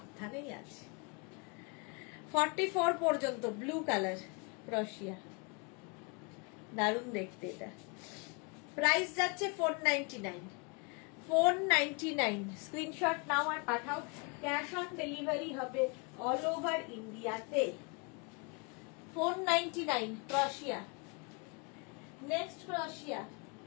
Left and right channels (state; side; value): quieter; right; 31.8 dB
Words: আছে। 44 পর্যন্ত ব্লু কালার ক্রোশিয়া, দারুণ দেখতে এটা। প্রাইস যাচ্ছে 499, 499। স্ক্রিনশট নাও আর পাঠাও। ক্যাশ অন ডেলিভারি হবে অল ওভার ইন্ডিয়াতে। 499 ক্রোশিয়া। নেক্সট ক্রোশিয়া।